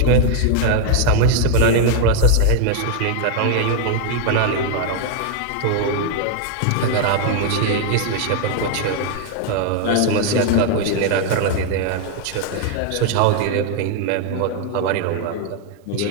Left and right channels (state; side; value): different; both; correlation 0.00